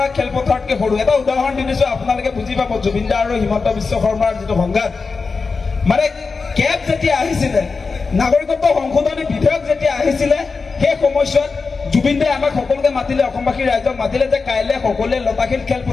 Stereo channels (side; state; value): right; quieter; 4.5 dB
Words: খেলপথাৰতকৈ সৰু। এটা উদাহৰণ দি দিছো, আপোনালোকে বুজি পাব জুবিন দা আৰু হিমন্ত বিশ্ব শৰ্মাৰ যিটো সংঘাত। মানে কেব যেতিয়া আহিছিলে, নাগৰিকত্ব সংশোধনী বিধেয়ক যেতিয়া আহিছিলে, সেই সময়ছোৱাত জুবিন দাই আমাক সকলোকে মাতিলে, অসমবাসী ৰাইজক মাতিলে যে কাইলৈ সকলোৱে লতাশিল